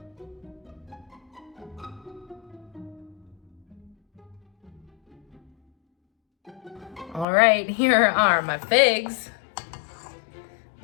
All right, here are my figs.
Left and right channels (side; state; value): right; drops out; at 7.2 s